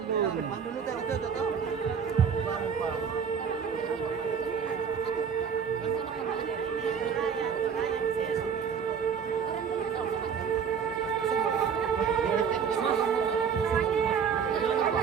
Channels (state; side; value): quieter; left; 6.9 dB